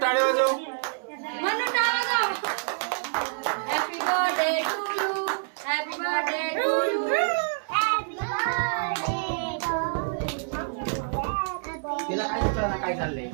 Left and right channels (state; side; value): silent; left; 60 dB below the other